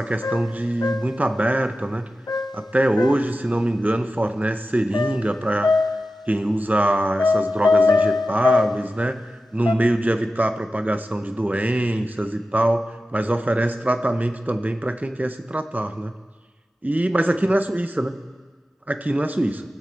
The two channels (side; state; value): both; normal; correlation 0.93